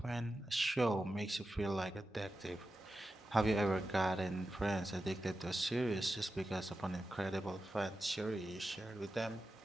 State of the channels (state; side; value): normal; both; correlation 0.92